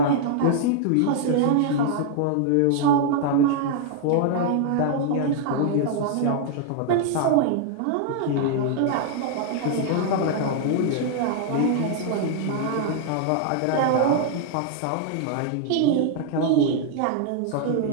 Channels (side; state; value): both; different; correlation -0.01